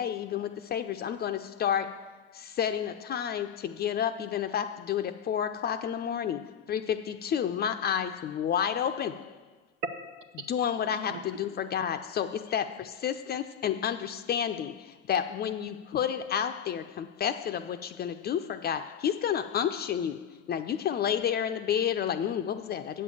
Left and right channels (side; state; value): right; quieter; 8.3 dB